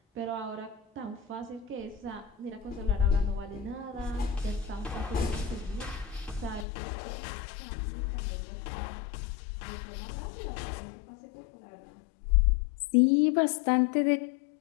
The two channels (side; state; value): right; drops out; at 6.7 s